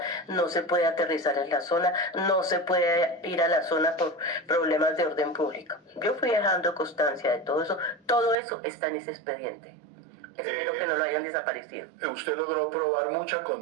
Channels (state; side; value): drops out; left; at 8.3 s